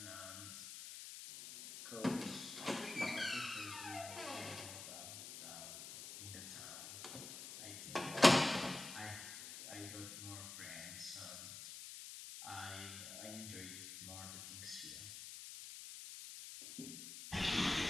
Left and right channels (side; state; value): left; noise; hiss, 9 dB below the sound